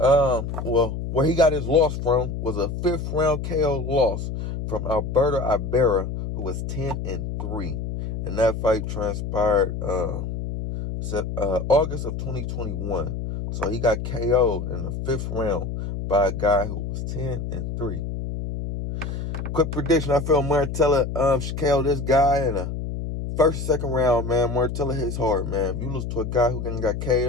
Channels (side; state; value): left; noise; hum, 5 dB below the sound